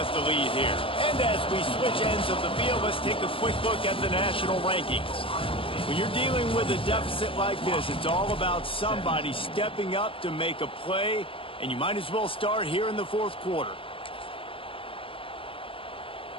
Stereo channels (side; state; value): right; late; 0.26 ms